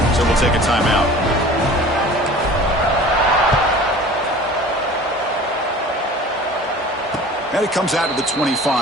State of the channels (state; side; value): normal; both; correlation 0.43